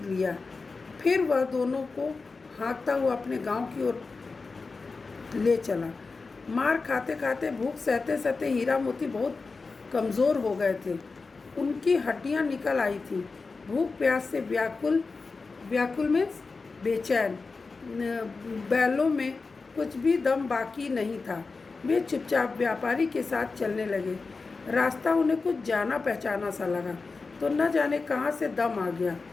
लिया। फिर वह दोनों को हाँकता हुआ अपने गांव की ओर ले चला। मार खाते खाते, भूख सहते सहते हीरा मोती बहुत कमज़ोर हो गए थे। उनकी हड्डियां निकल आई थी। भूख प्यास से व्याकुल में बेचैन। बैलों में कुछ भी दम बाकी नहीं था। वे चुपचाप व्यापारी के साथ चलने लगे। रास्ता उन्हें कुछ जाना पहचाना सा लगा, तो न जाने कहाँ से दम आ गया।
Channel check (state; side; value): quieter; right; 4.2 dB